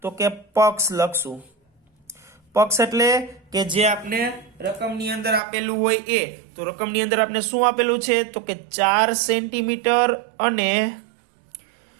તો કે પક્ષ લખશું. પક્ષ એટલે કે જે આપણે રકમની અંદર આપેલું હોય એ. તો રકમની અંદર આપણે શું આપેલું છે? તો કે 4 સેન્ટીમીટર અને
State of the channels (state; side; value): drops out; left; at 5.4 s